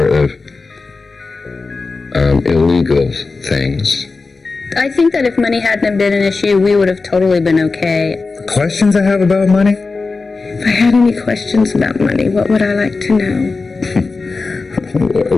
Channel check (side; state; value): right; quieter; 4.0 dB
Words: of illegal things. I think that if money hadn't been an issue, we would have totally been okay. Questions I have about money? If I had any questions about money, what would I like to know?